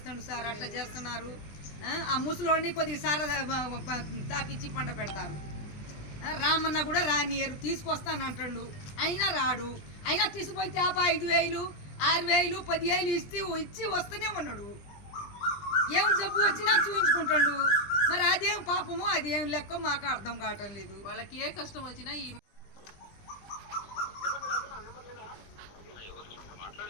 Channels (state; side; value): late; right; 20 ms